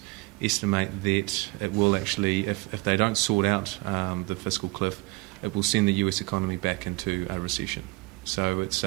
estimate that it will actually, if they don't sort out the fiscal cliff, it will send the US economy back into a recession. So it's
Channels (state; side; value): quieter; left; 24.8 dB